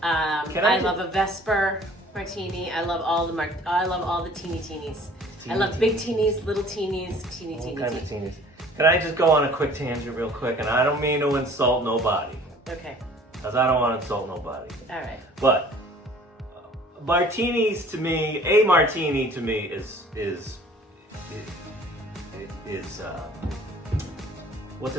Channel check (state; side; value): normal; both; correlation 0.51